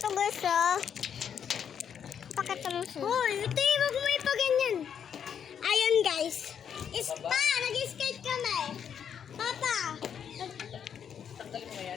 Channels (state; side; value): quieter; right; 8.1 dB